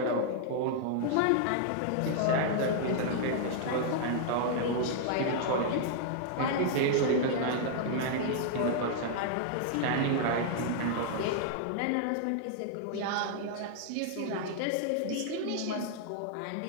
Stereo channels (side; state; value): both; different; correlation -0.01